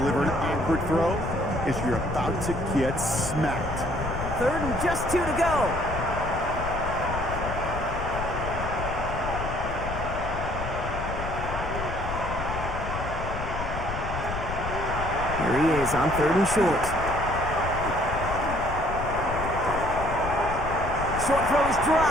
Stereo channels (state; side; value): noise; left; rumble, 6 dB below the sound